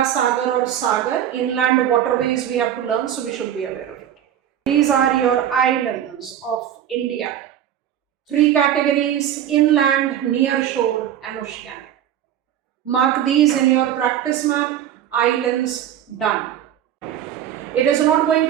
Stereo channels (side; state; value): left; quieter; 10.6 dB